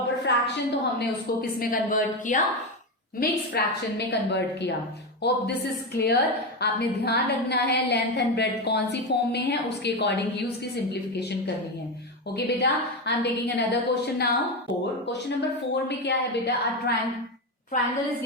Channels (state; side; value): normal; both; correlation 0.14